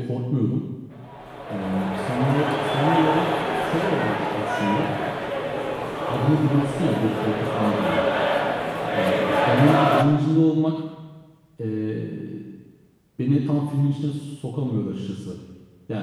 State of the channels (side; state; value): both; identical; correlation 1.00